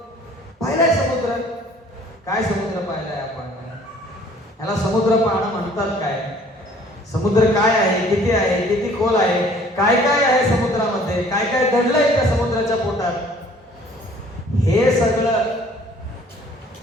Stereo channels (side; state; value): both; normal; correlation 0.55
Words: पाहिलाय समुद्र. काय समुद्र पाहिलाय आपण? याला समुद्र पाहणं म्हणतात काय? समुद्र काय आहे, किती खोल आहे, काय काय आहे समुद्रामध्ये, काय काय दडलंय त्या समुद्राच्या पोटात, हे सगळं